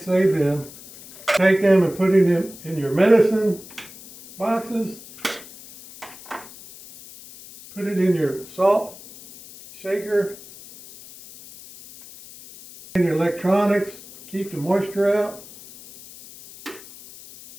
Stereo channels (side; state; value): left; noise; hiss, 18 dB below the sound